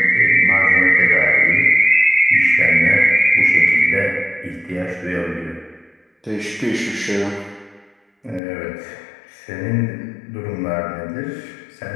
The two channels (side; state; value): right; drops out; at 8.4 s